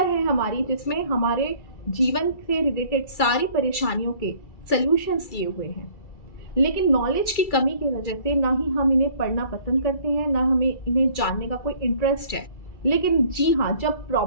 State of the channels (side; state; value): right; late; 2.3 ms